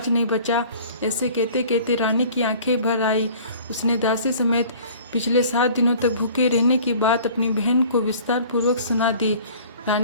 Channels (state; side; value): inverted; both; correlation -0.48